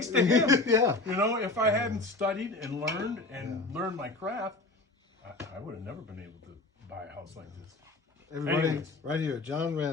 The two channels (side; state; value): right; quieter; 3.1 dB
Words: to him. Yeah. You know, if I hadn't studied and learned my craft, I would have never been able to buy a house like this. Everybody, right here, John